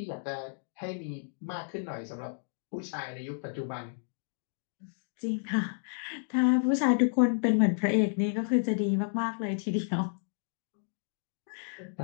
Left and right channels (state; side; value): silent; right; digital silence